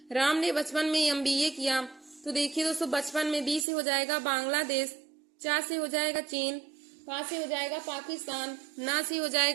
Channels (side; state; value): left; drops out; at 3.7 s